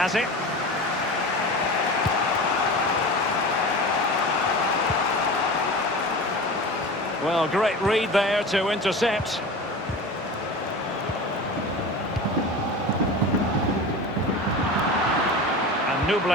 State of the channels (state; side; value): normal; both; correlation 0.32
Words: it. Well, great read there to intercept. And